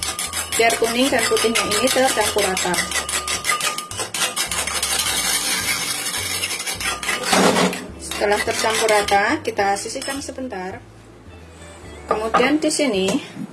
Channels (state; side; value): identical; both; correlation 1.00